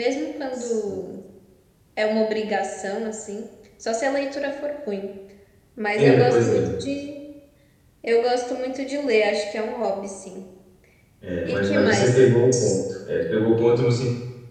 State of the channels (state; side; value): identical; both; correlation 1.00